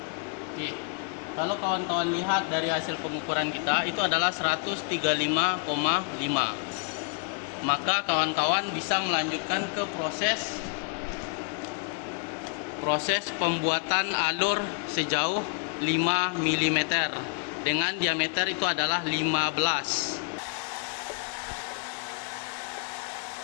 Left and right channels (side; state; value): right; quieter; 37.1 dB